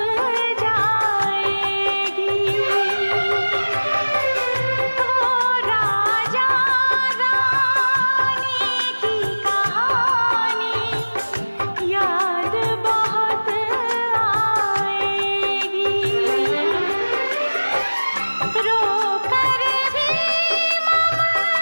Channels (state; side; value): inverted; both; correlation -1.00